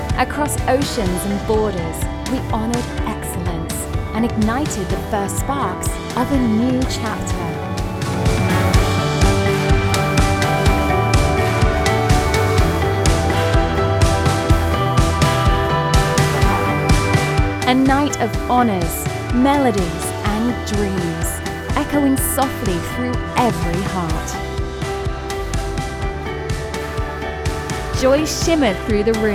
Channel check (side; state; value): both; identical; correlation 1.00